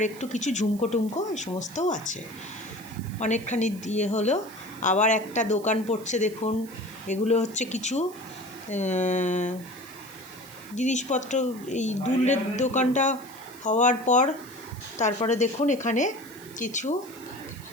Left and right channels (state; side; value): noise; right; hiss, 20 dB below the sound